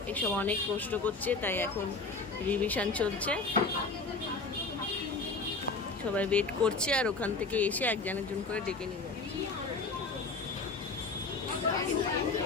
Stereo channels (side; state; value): right; quieter; 3.9 dB